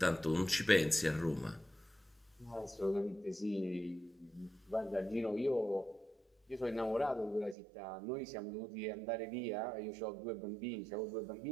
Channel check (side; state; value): left; drops out; at 7.6 s